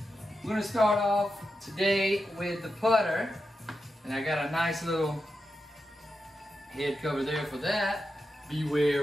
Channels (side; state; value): both; normal; correlation 0.89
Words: we're going to start off today with the putter, and I got a nice little head cover there for that.